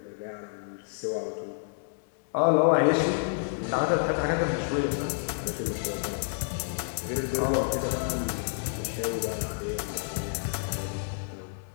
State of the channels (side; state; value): right; silent; 58 dB below the other